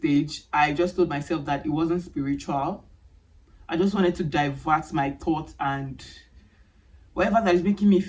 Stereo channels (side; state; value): both; identical; correlation 1.00